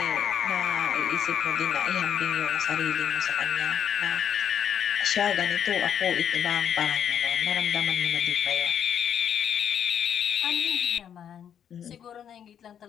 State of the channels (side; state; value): right; quieter; 9.0 dB